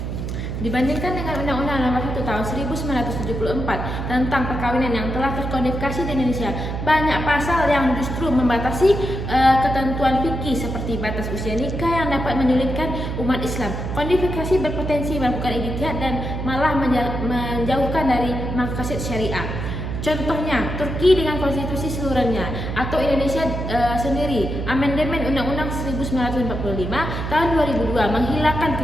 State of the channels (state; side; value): noise; right; hum, 4 dB below the sound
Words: Tahun 1974 tentang perkawinan yang telah terkodifikasi di Indonesia, banyak pasal yang justru membatasi ketentuan fikih seperti batas usia nikah yang dapat menyulitkan umat Islam. Kodifikasi berpotensi melakukan ijtihad dan malah menjauhkan dari maqasid syariah. Contohnya, Turki dengan konstitusi seluruhnya, atau Indonesia sendiri. Amandemen Undang-Undang 1945 tahun 2002 menghilangkan